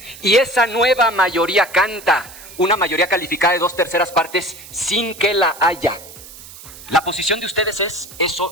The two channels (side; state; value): right; noise; hiss, 17 dB below the sound